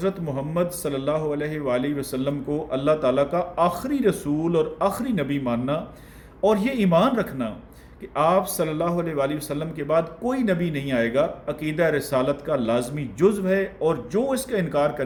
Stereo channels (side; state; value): both; identical; correlation 1.00